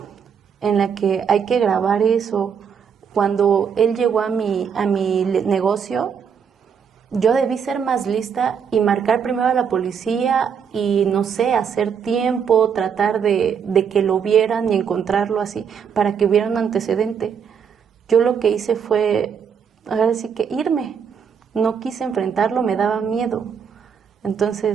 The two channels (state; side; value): quieter; left; 7.1 dB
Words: en la que hay que grabar eso. Cuando él llegó a mi negocio, yo debí ser más lista y marcar primero a la policía y, no sé, hacer tiempo, tratar de que lo vieran y encontrarlo así, para que hubiera un antecedente. Yo lo que hice fue, ahora sí que irme. No quise enfrentarlo, me daba miedo.